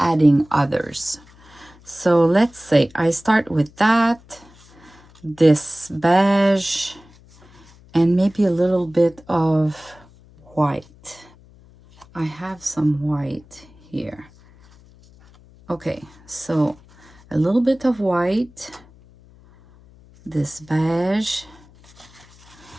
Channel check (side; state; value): left; noise; hum, 26 dB below the sound